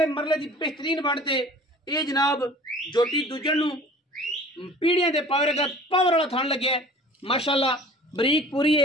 मरले दी बेहतरीन बनते ये जनाब जोटी दुजण नूं पीढ़ियां दे पावर का पावर वाला थान लगे माशाअल्लाह बरीक पूरी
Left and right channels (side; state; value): both; normal; correlation 0.46